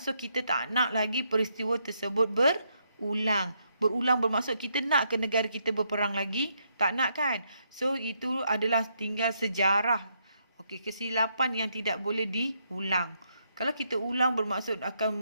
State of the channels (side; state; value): both; inverted; correlation -0.77